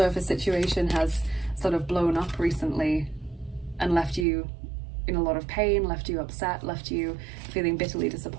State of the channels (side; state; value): left; drops out; at 4.2 s